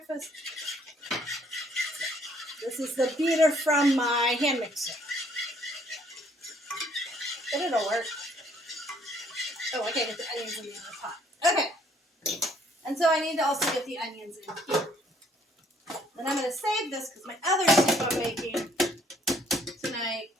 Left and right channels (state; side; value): normal; both; correlation 0.64